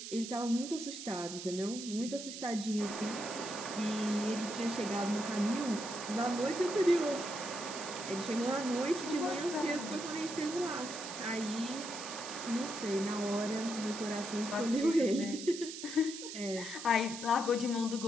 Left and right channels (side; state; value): right; noise; hiss, 9 dB below the sound